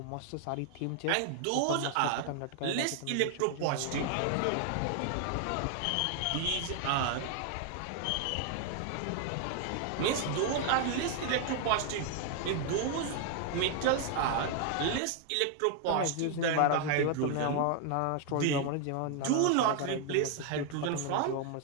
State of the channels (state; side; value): different; both; correlation 0.00